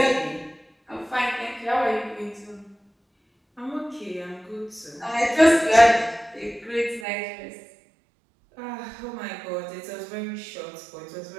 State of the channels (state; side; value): drops out; left; at 7.1 s